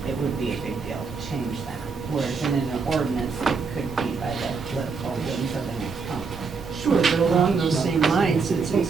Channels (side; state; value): left; quieter; 4.9 dB